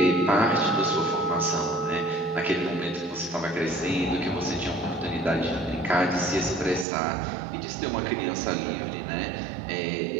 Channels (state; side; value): drops out; left; at 6.9 s